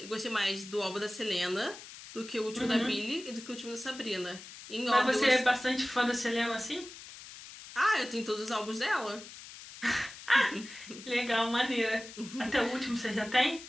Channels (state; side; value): noise; left; hiss, 15 dB below the sound